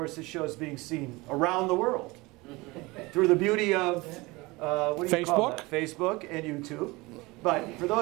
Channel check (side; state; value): left; quieter; 23.1 dB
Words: this show is being seen around the world through the beauty of what do you call that? Facebook and YouTube. But for